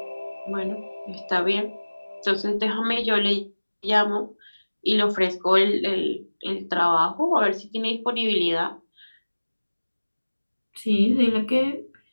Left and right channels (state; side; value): inverted; both; correlation -1.00